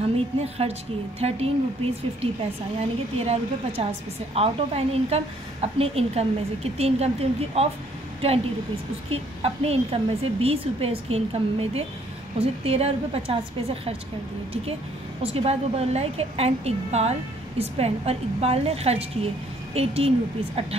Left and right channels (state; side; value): normal; both; correlation 0.64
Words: ने खर्च किए 13 रुपीज़ 50 पैसा, यानी कि 13 रुपये 50 पैसे आउट ऑफ एनी इनकम, अपने इनकम में से। कितनी इनकम थी उनकी? Of 20 rupees. उसकी अपने इनकम में से 20 रुपये उसकी इनकम में थे, उसे 13 रुपये 50 पैसे खर्च कर दिए। ठीक है, उसके बाद वो बोल रहा है कि एंड इकबाल स्पेंड, और इकबाल ने खर्च किए 18 रुपीज़